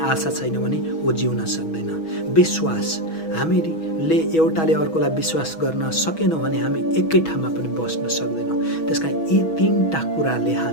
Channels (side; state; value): right; late; 6.2 ms